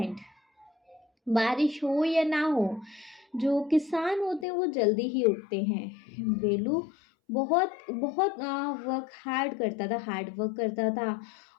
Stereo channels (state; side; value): drops out; right; at 4.5 s